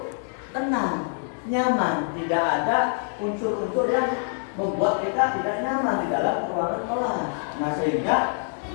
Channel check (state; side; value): silent; right; digital silence